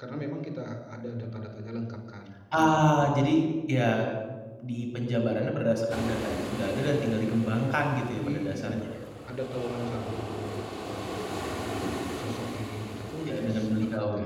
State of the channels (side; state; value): both; identical; correlation 1.00